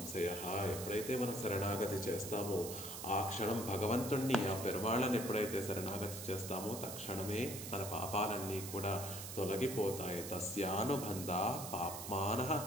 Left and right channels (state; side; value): noise; right; hiss, 8 dB below the sound